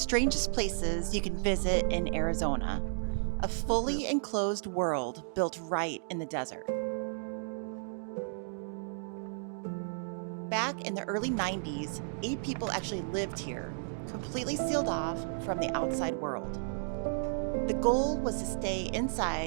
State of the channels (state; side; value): silent; left; digital silence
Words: places you can visit in Arizona, a fully enclosed world built right in the desert. Back in the early 90s, 8 people actually lived here, completely sealed off from the outside world. The goal was to stay